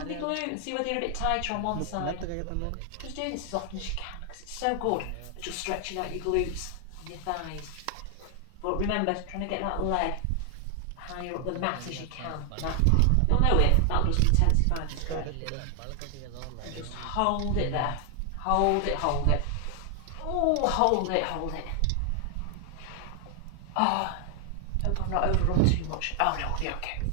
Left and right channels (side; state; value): both; different; correlation 0.00